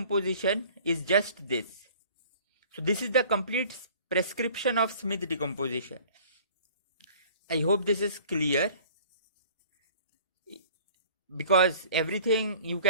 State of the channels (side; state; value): both; inverted; correlation -0.49